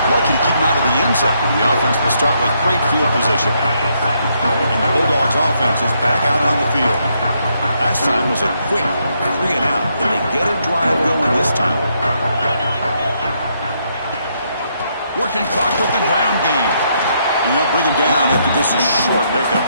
Lucky to keep him out of the end zone. The offense will start with great field position. And the Bulldogs offense is back out on the field. Last time was a quick 3 and out. And they get a drive going this time. Working clock with the ground game. And they'll bring him down after this is short pickup.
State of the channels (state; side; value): inverted; both; correlation -0.75